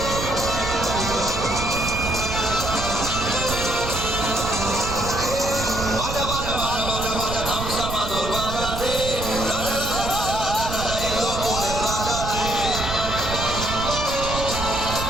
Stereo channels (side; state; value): right; noise; rumble, 6 dB below the sound